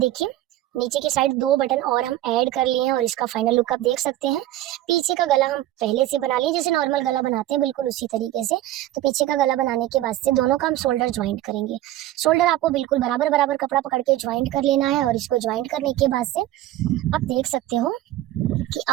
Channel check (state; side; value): quieter; left; 14.4 dB